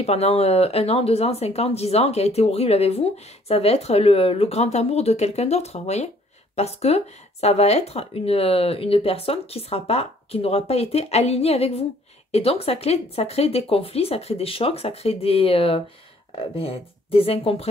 pendant 1 an, 2 ans, 5 ans, 10 ans, qui a été horrible avec vous, ça va être le grand amour de quelqu'un d'autre, vous voyez? Parce que ça va être une personne qui n'aura pas été alignée avec vous. Et donc, ça crée des conflits, ça crée des chocs, ça crée des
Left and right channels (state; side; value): normal; both; correlation 0.60